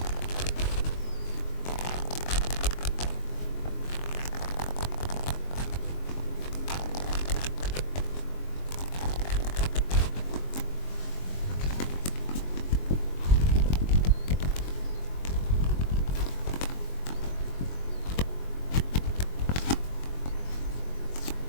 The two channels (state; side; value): late; right; 22 ms